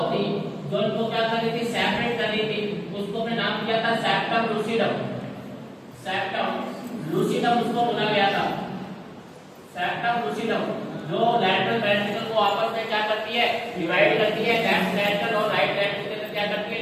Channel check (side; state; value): both; identical; correlation 1.00